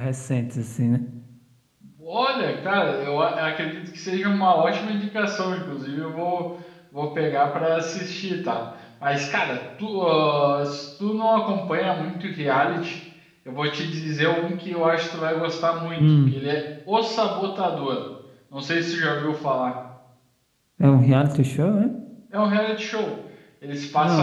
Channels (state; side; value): identical; both; correlation 1.00